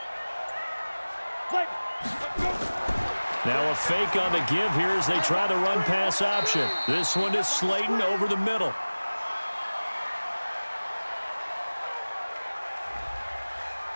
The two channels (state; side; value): inverted; both; correlation -1.00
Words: Let's go. Now a fake on the give here as they try the run-pass option. This one is Slayton over the middle.